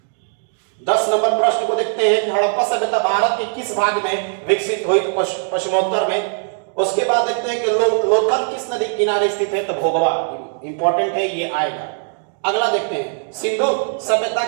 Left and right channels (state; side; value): silent; left; digital silence